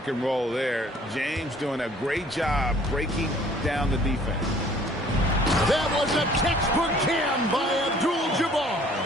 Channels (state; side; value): normal; both; correlation 0.56